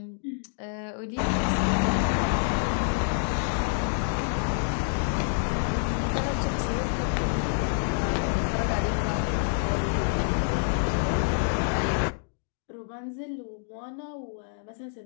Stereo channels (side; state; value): right; silent; digital silence